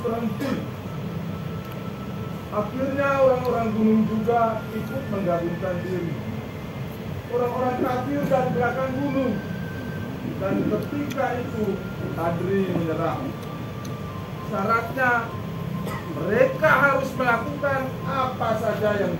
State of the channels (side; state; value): both; identical; correlation 1.00